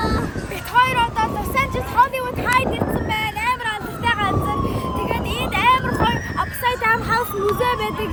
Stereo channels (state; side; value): identical; both; correlation 1.00